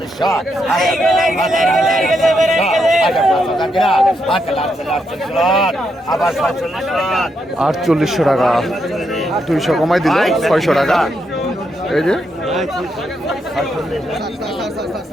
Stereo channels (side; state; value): both; normal; correlation 0.80